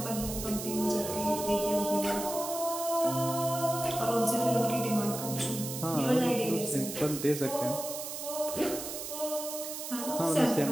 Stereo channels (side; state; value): right; noise; hiss, 7 dB below the sound